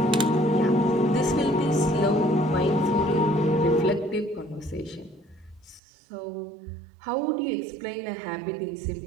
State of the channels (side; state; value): left; drops out; at 5.8 s